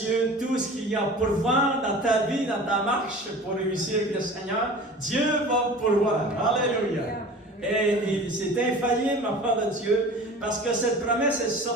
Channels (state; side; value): normal; both; correlation 0.40